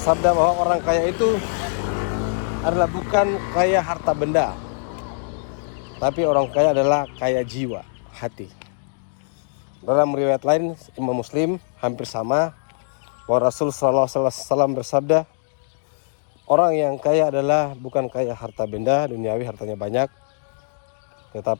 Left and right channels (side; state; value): right; silent; digital silence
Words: bahwa orang kaya itu adalah bukan kaya harta benda, tapi orang kaya adalah kaya jiwa, hati. Dalam riwayat lain Imam Muslim hampir sama, bahwa Rasul SAW bersabda, orang yang kaya adalah bukan kaya harta benda duniawi, hartanya banyak,